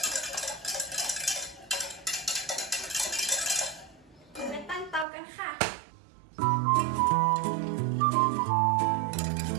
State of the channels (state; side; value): drops out; left; at 5.1 s